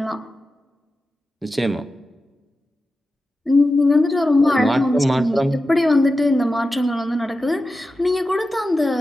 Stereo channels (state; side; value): normal; both; correlation 0.92